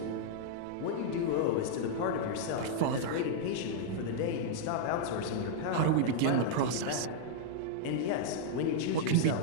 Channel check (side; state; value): both; different; correlation -0.01